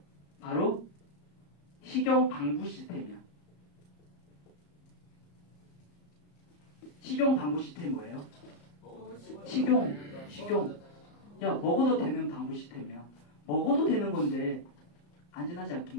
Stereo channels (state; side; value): late; right; 34 ms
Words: 바로 식용 방부 시스템이야. 식용 방부 시스템 뭐예요? 식용. 야, 먹어도 되는 방부 시스템이야. 먹어도 되는 건데 안전하지